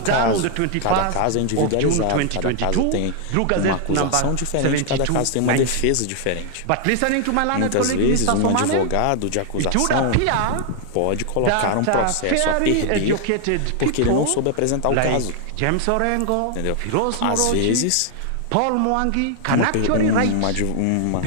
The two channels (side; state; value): both; different; correlation 0.00